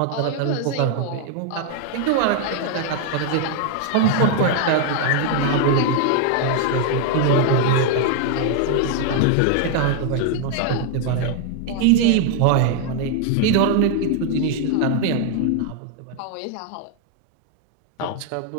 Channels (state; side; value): different; both; correlation 0.00